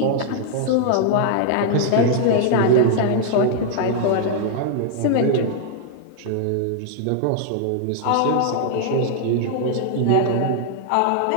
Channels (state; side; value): different; both; correlation -0.01